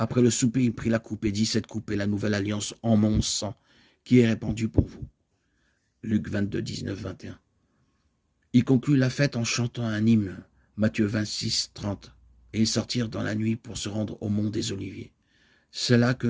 le souper, il prit la coupe et dit « Cette coupe est la nouvelle alliance en mon sang, qui est répandue pour vous ». Luc 22, 19, 21. Il conclut la fête en chantant un hymne, Matthieu 26, 30. Et ils sortirent dans la nuit pour se rendre au mont des Oliviers. C'est là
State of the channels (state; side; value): identical; both; correlation 1.00